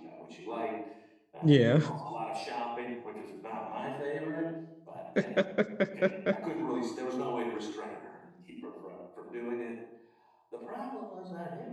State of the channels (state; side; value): identical; both; correlation 1.00